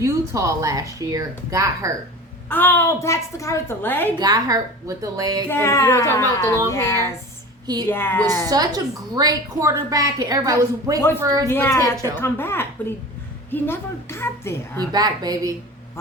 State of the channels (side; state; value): both; normal; correlation 0.35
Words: last year. Got hurt. Oh, that's the guy with the leg? Got hurt with the leg. Yeah. And you know what I'm talking about with the long hair? He was such a great quarterback, and everybody was waiting for his potential to come back, but he never got there. He back, baby.